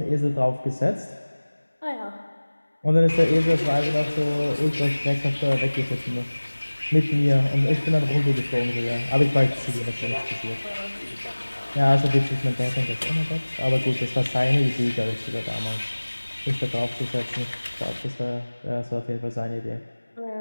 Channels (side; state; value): both; inverted; correlation -1.00